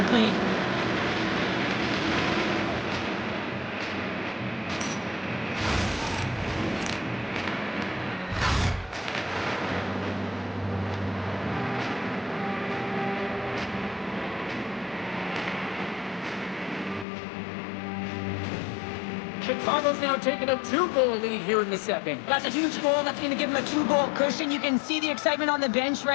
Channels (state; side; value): drops out; right; at 17.1 s